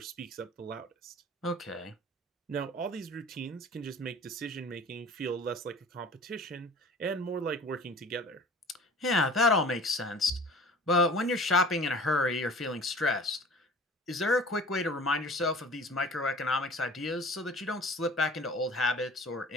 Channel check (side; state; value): both; normal; correlation 0.44